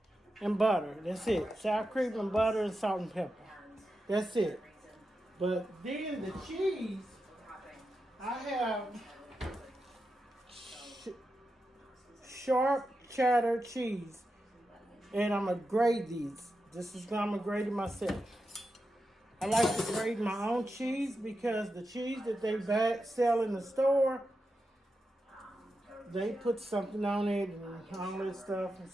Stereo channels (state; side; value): normal; both; correlation 0.89